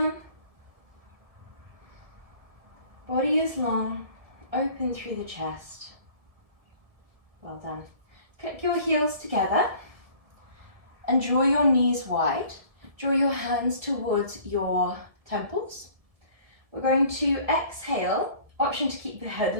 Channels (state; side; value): late; left; 1.7 ms